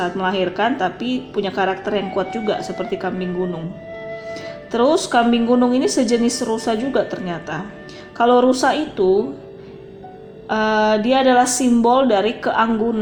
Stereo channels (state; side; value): identical; both; correlation 1.00